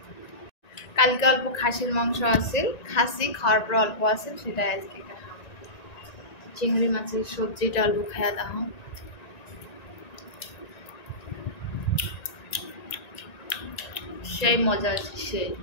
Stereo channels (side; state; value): right; late; 1.9 ms